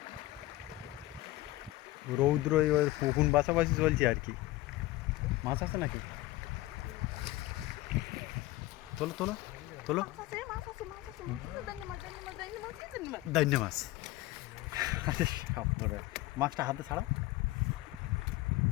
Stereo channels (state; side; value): quieter; right; 17.9 dB